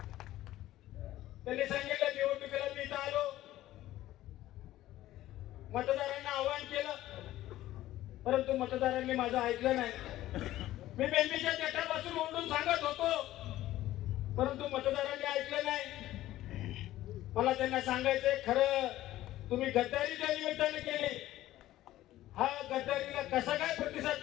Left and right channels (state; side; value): quieter; right; 14.8 dB